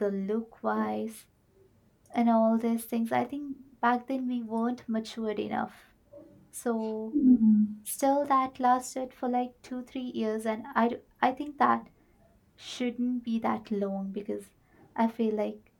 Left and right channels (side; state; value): both; identical; correlation 1.00